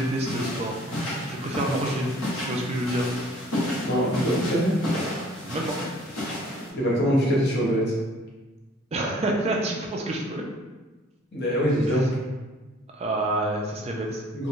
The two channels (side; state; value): both; normal; correlation 0.55